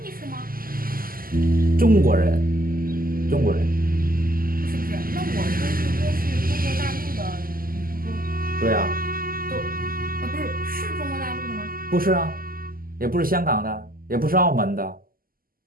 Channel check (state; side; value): late; left; 0.42 ms